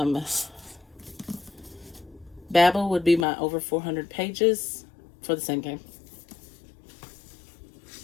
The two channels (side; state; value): right; drops out; at 3.2 s